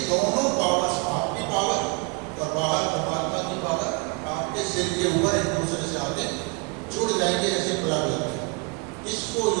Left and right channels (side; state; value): left; quieter; 30.8 dB